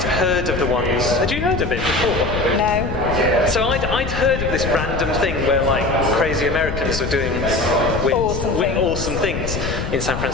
heard of the ones. Had you heard of it before? No. So I'd heard of this random thing where like crazy Americans are doing awesome things in San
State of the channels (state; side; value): noise; left; rumble, 5 dB below the sound